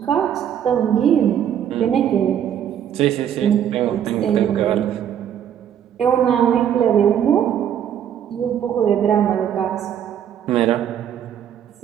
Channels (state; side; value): quieter; left; 9.5 dB